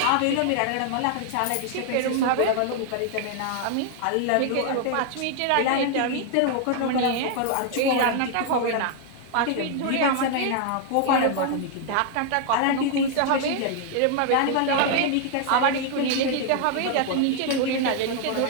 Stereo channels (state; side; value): different; both; correlation 0.00